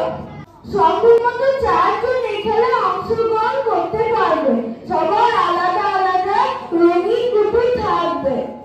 সর্বমোট 4 জন এই খেলায় অংশগ্রহণ করতে পারবে। সবার আলাদা আলাদা রঙিন গুটি থাকবে।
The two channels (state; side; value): identical; both; correlation 1.00